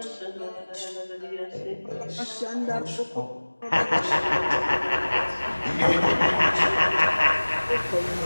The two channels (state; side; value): inverted; both; correlation -1.00